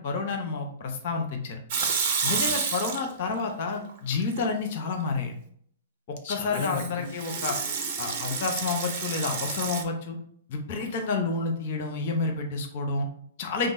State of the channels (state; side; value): inverted; both; correlation -0.35